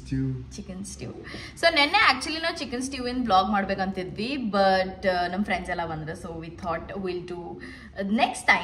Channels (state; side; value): identical; both; correlation 1.00